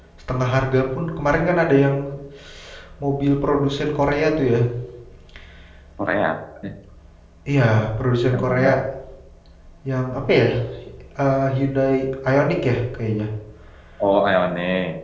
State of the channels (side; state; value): both; identical; correlation 1.00